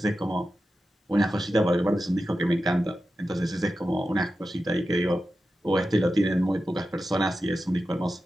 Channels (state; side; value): normal; both; correlation 0.91